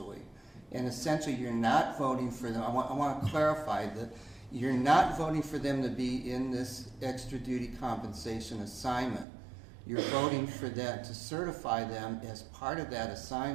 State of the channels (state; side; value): drops out; left; at 9.2 s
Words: And essentially, you're not voting for them. I want to clarify that you're not voting for them to be in this extra duty compensation assignment. You're voting for them to certify them as part of that